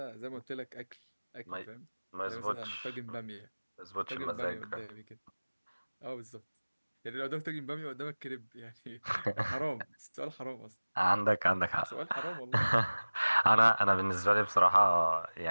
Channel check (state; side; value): inverted; both; correlation -1.00